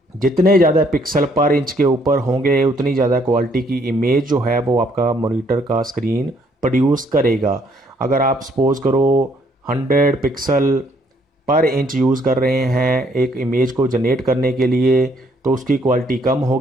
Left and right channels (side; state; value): both; normal; correlation 0.67